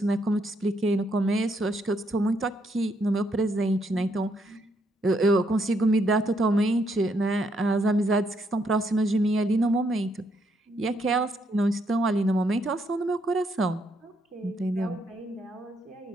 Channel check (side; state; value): both; normal; correlation 0.74